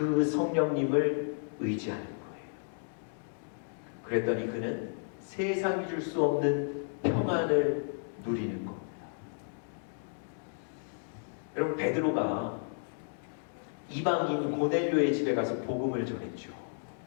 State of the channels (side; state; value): right; silent; digital silence